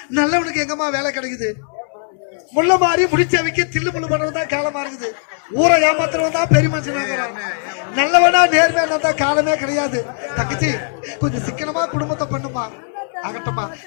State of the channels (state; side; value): silent; right; digital silence